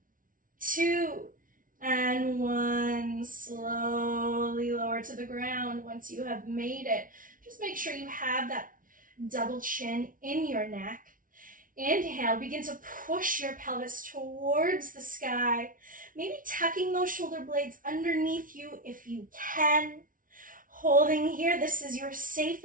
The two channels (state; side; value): late; left; 0.39 ms